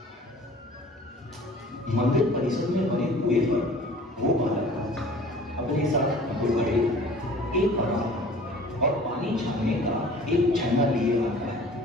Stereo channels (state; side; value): normal; both; correlation 0.47